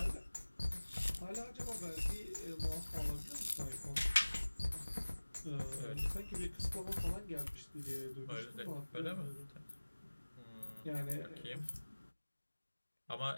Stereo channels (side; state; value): both; inverted; correlation -1.00